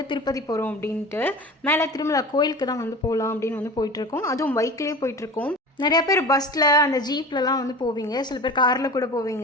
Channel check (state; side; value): normal; both; correlation 0.35